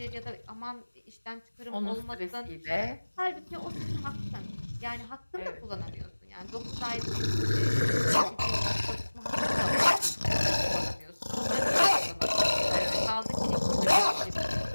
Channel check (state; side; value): inverted; both; correlation -1.00